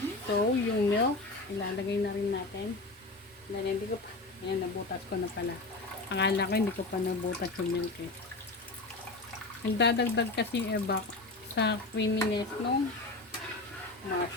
So, yung milk, ilalagay na rin natin. Dahil hindi ko pa, ayan, nabutas ko na pala. Akala ko hindi ko pa nabutas yung milk eh. Nagdadagdag kasi ebak sa creaminess nung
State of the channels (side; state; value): right; quieter; 3.1 dB